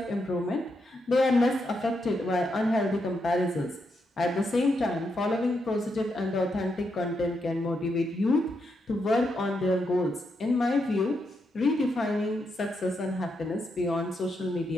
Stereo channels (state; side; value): normal; both; correlation 0.82